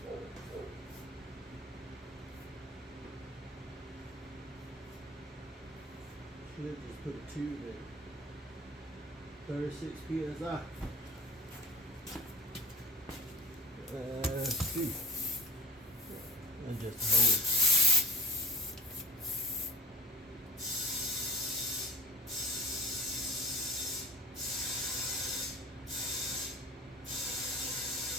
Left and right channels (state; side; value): normal; both; correlation 0.39